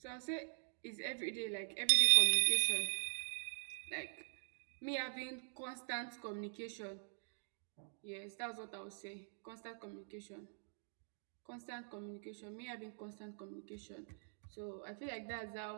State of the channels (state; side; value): silent; left; digital silence